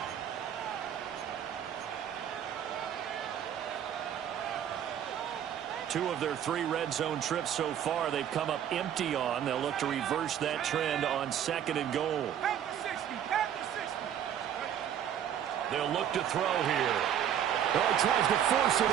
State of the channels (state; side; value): quieter; left; 9.7 dB